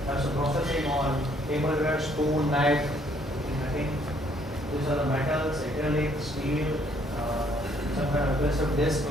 some processing on tableware, spoon, knife, cutting. These are the metals, acrylic, steel, some kind of aggressive disc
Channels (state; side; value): normal; both; correlation 0.65